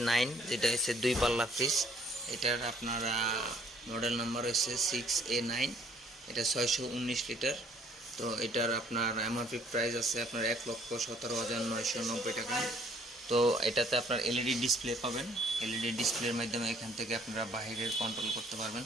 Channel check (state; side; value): normal; both; correlation 0.61